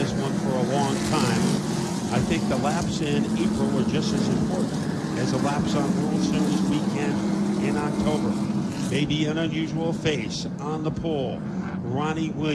one for a long time. I think the laps in April are just as important as the laps on World Series weekend in October. Maybe an unusual face on the pole. Ronnie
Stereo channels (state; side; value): identical; both; correlation 1.00